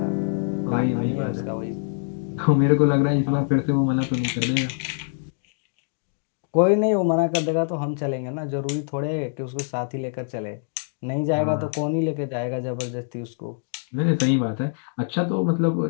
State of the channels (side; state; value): right; silent; digital silence